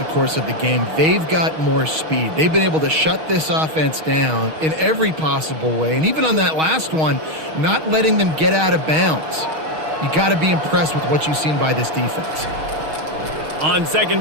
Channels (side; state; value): left; late; 6.4 ms